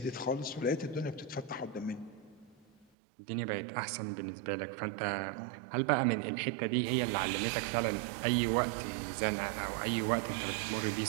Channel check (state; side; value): drops out; left; at 2.9 s